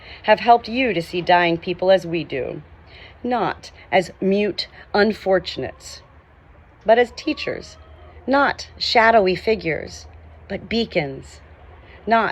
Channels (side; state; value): both; identical; correlation 1.00